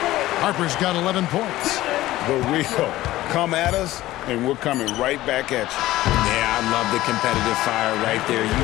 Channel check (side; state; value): right; quieter; 16.1 dB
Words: Harper's got 11 points. The real. Come at us, and we're coming right back at you. Yeah, I love the competitive fire right there. You